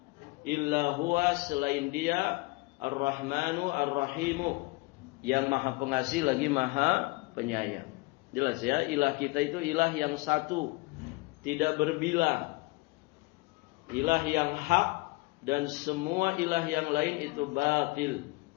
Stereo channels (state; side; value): quieter; right; 24.5 dB